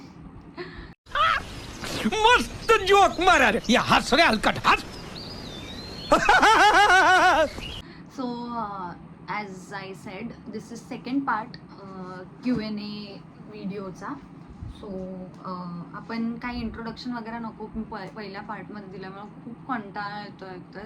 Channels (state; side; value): identical; both; correlation 1.00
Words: मस्त जोक मारा रे. या हस रे हलकट हस. So as I said this is second part Q&A व्हिडिओचा. सो आपण काही इंट्रोडक्शन वगैरे नको. मी पहिल्या पार्टमध्ये दिल्यामुळे खूप कंटाळा येतो